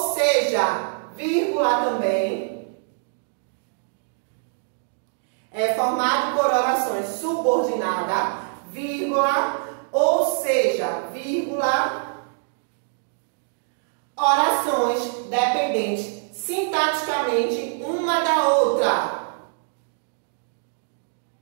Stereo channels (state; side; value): silent; left; digital silence